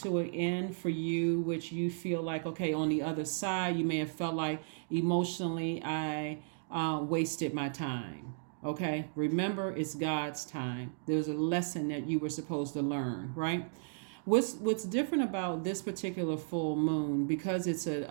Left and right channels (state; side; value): silent; left; digital silence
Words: an end for you, which you feel like, okay, on the other side, you may have felt like emotionally I wasted my time. Okay, remember, it's God's time. There's a lesson that you were supposed to learn, right? What's different about this particular full moon, because it's